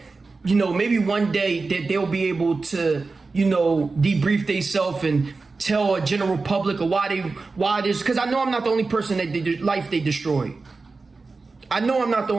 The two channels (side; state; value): left; quieter; 4.0 dB